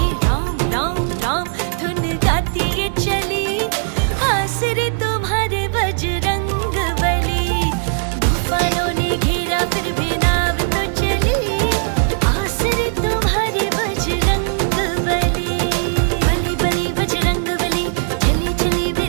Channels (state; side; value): silent; left; digital silence